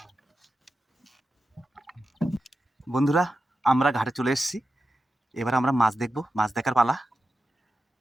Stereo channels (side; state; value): both; normal; correlation 0.91